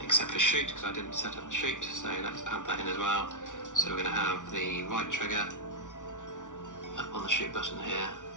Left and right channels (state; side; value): late; right; 0.87 ms